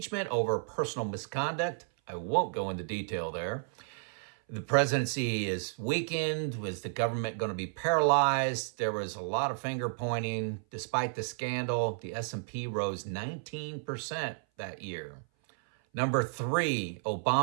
over personal misconduct. I won't go into detail there. The presidency is weakened. Was the government going to be paralyzed? There was a lot of finger pointing. Despite the scandal, the S&P rose 19% that year. Number 3,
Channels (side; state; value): left; silent; 56 dB below the other